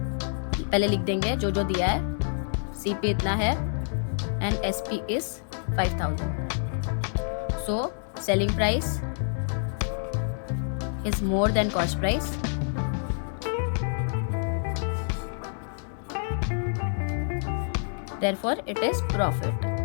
पहले लिख देंगे जो दिया है, CP इतना है and SP is 5000। So selling price is more than cost price, therefore it is profit.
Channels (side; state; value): right; silent; digital silence